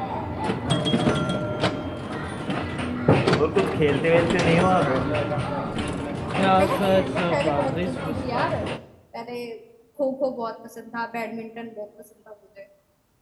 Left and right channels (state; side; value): identical; both; correlation 1.00